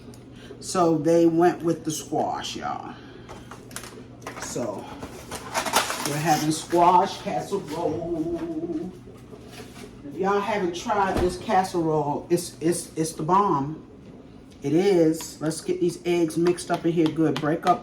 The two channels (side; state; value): both; identical; correlation 1.00